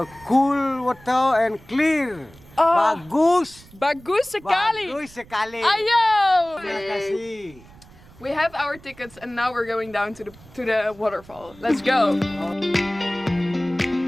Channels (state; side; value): noise; right; rumble, 23 dB below the sound